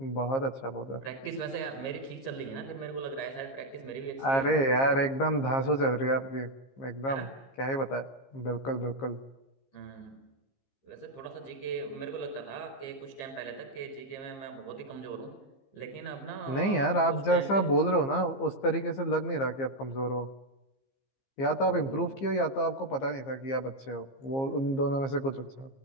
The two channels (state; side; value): late; right; 15 ms